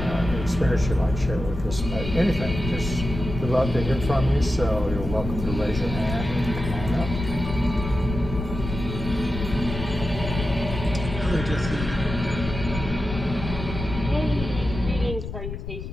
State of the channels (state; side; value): noise; left; rumble, 7 dB below the sound